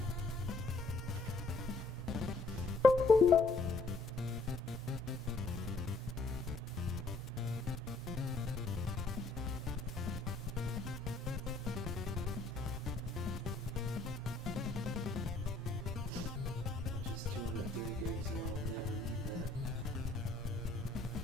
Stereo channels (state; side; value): quieter; right; 3.4 dB